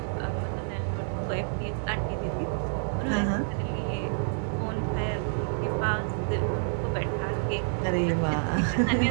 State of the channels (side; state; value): left; silent; digital silence